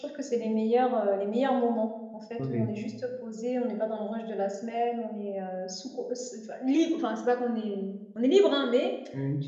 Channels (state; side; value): identical; both; correlation 1.00